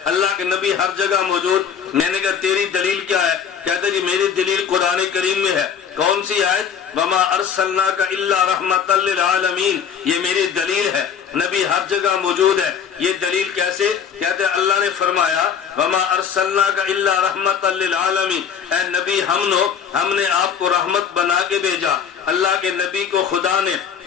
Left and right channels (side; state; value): right; quieter; 7.4 dB